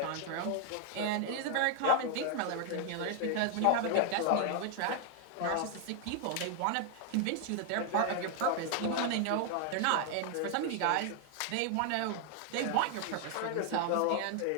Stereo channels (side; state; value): both; different; correlation 0.00